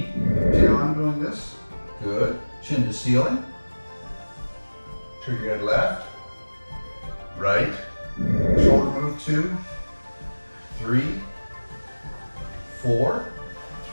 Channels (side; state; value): both; inverted; correlation -1.00